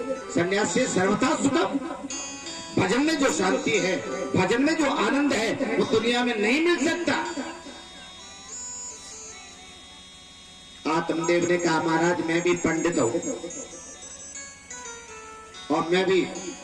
संन्यास से सर्वथा सुखम। भजन में जो शांति है, भजन में जो आनंद है, वो दुनिया में नहीं मिल सकता। आत्मदेव ने कहा, महाराज मैं भी पंडित हूं, और मैं भी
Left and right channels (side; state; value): both; identical; correlation 1.00